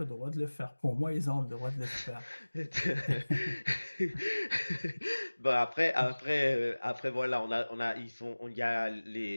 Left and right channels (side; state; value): both; inverted; correlation -1.00